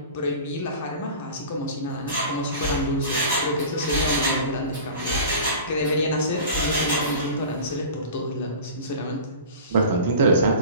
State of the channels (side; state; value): both; inverted; correlation -0.36